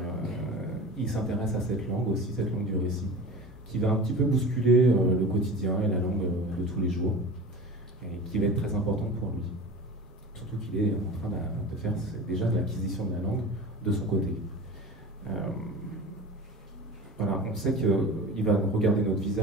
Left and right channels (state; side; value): normal; both; correlation 0.34